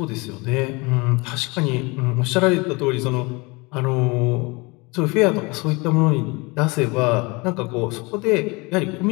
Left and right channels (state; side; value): quieter; right; 26.4 dB